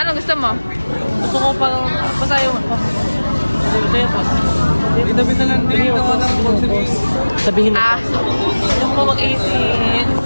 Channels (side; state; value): both; inverted; correlation -1.00